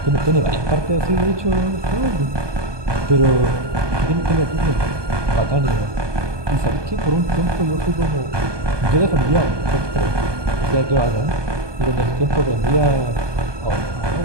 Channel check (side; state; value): left; late; 1.2 ms